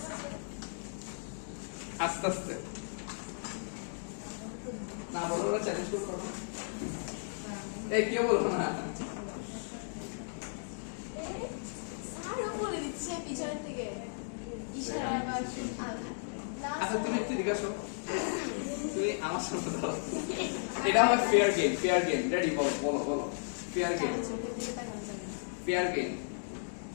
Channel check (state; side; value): silent; right; digital silence